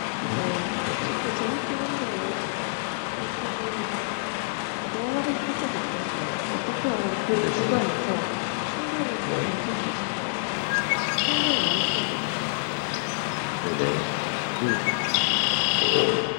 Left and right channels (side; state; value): right; silent; digital silence